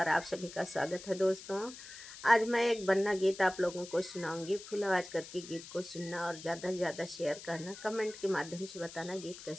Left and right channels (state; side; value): noise; left; hiss, 14 dB below the sound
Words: आप सभी का स्वागत है। दोस्तों, आज मैं एक बन्ना गीत आप लोगों को सुनाऊंगी। फुल आवाज़ करके गीत को सुनना और ज़्यादा से ज़्यादा शेयर करना, कमेंट के माध्यम से बताना गीत